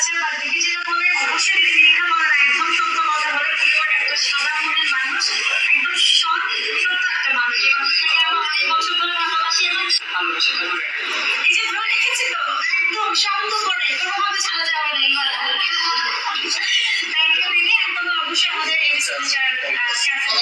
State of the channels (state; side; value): identical; both; correlation 1.00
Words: বাট দেখি যেটা বলে অবশ্যই দীক্ষা বলার একদম সত্য কথা বলে, পিওর একটা সাদা মনের মানুষ, একদম সত্য একটা মানুষ। এই মানুষটাকে আমরা অনেক বছর ধরে ভালোবাসি এবং ভালোবাসাটা ধরে এই যে ধরে রেখেছি তো একদম শক্ত করে, কোনোভাবে ছাড়া যাবে না। এবার থ্যাংক ইউ দিদি। একদম অবশ্যই আমাদের এই রিসার্চার ক্যাফে